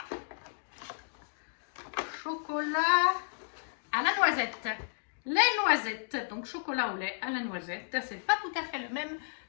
chocolat à la noisette. Les noisettes, donc chocolat au lait à la noisette. C'est pas tout à fait le même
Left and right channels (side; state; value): right; silent; digital silence